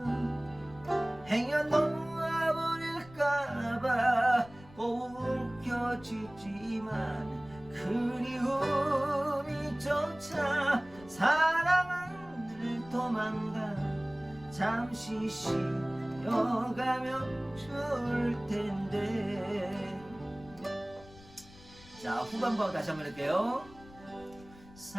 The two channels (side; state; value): left; noise; rumble, 21 dB below the sound